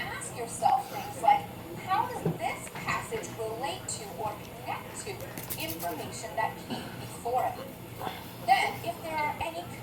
yourself things like, how does this passage relate to or connect to information that came before it? Then, if there are any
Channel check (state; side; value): identical; both; correlation 1.00